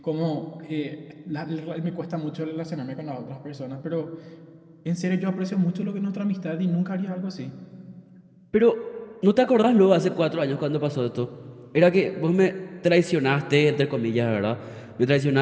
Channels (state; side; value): identical; both; correlation 1.00